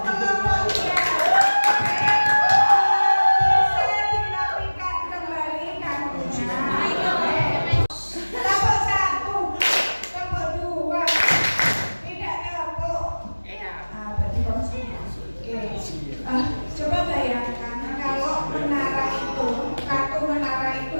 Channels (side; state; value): both; inverted; correlation -1.00